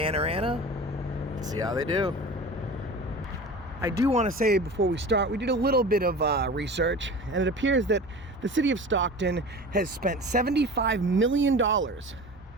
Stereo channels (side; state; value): both; normal; correlation 0.36